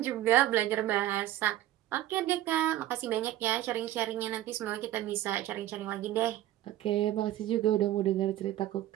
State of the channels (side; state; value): left; quieter; 13.8 dB